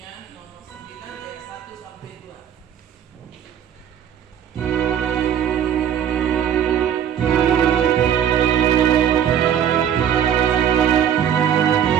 nomor 9 ayat 1 sampai 2.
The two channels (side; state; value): left; quieter; 9.4 dB